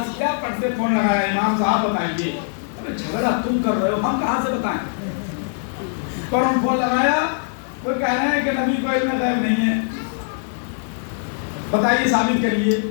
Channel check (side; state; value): right; silent; digital silence